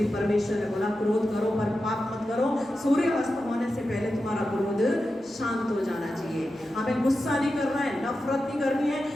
परमेश्वर ने बोला क्रोध करो पर पाप मत करो, सूर्य अस्त होने से पहले तुम्हारा क्रोध शांत हो जाना चाहिए। हमें गुस्सा नहीं करना है, नफरत नहीं करनी है,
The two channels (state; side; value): normal; both; correlation 0.91